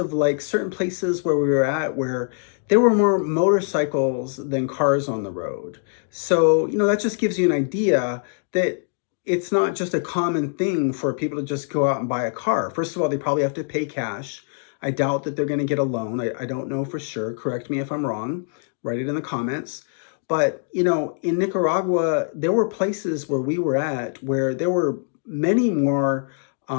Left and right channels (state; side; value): silent; right; digital silence